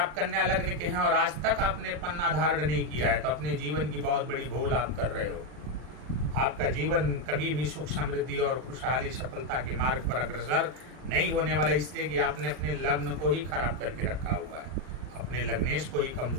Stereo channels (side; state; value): left; late; 40 ms